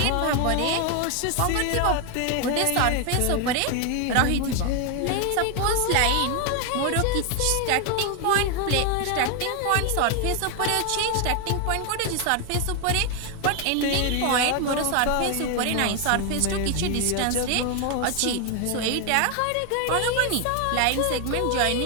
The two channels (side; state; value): both; different; correlation 0.01